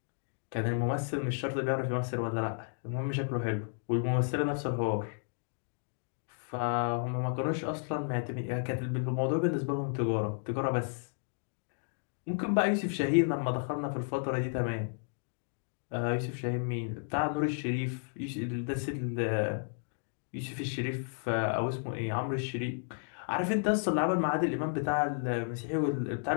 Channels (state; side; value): silent; right; digital silence